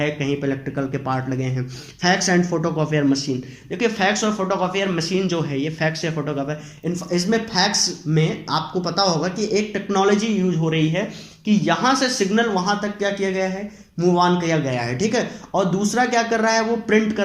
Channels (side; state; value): both; identical; correlation 1.00